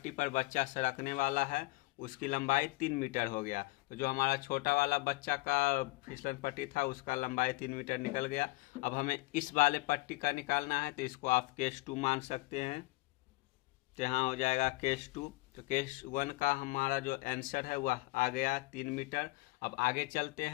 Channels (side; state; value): right; quieter; 22.8 dB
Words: पर बच्चा सरकने वाला है उसकी लंबाई 3 मीटर हो गया। तो जो हमारा छोटा वाला बच्चा का फिसलन पट्टी था उसका लंबाई 3 मीटर निकल गया। अब हमें इस वाले पट्टी का निकालना है, तो इसको आप केस 2 मान सकते हैं। तो यहाँ हो जाएगा केस 2। तो केस 1 का हमारा जो आंसर है वह आ गया 3 मीटर। अब आगे चलते